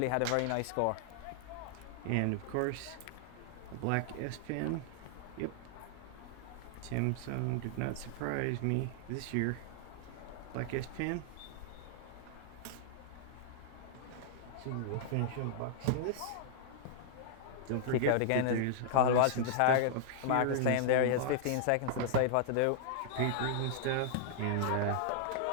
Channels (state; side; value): different; both; correlation -0.01